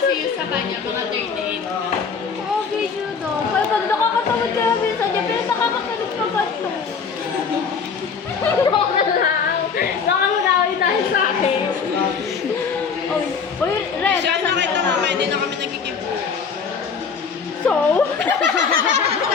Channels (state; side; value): quieter; right; 5.8 dB